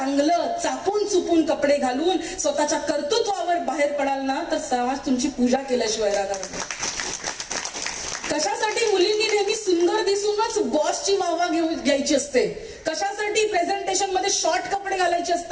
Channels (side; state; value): both; identical; correlation 1.00